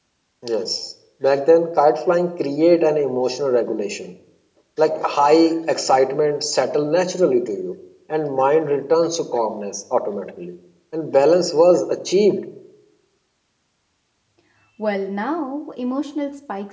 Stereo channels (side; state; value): both; identical; correlation 1.00